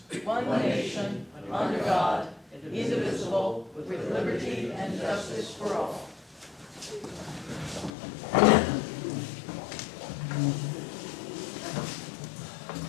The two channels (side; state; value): right; drops out; at 7.9 s